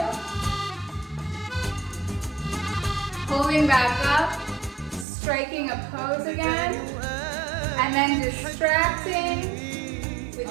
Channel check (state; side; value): drops out; left; at 5.1 s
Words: Pulling back up, striking a pose again, and then distracting